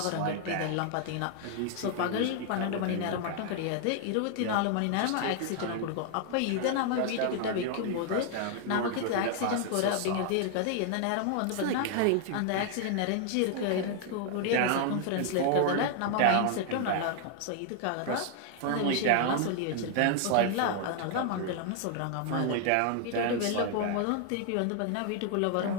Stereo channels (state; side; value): different; both; correlation 0.00